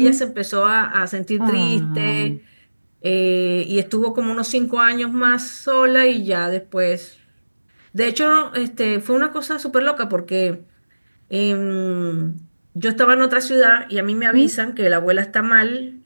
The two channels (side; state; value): both; inverted; correlation -1.00